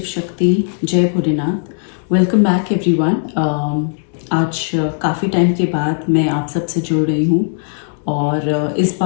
शक्ति, जय भोलेनाथ। Welcome back everyone. आज काफ़ी टाइम के बाद मैं आप सबसे जुड़ रही हूँ और इस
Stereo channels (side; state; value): right; silent; digital silence